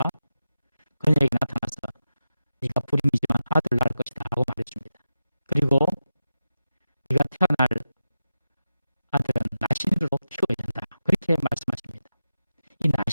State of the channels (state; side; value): inverted; both; correlation -0.91